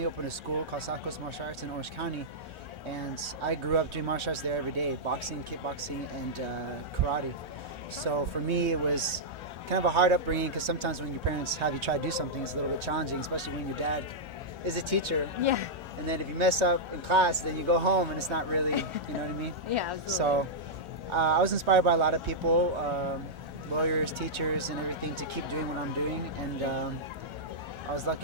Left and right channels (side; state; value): left; late; 1.4 ms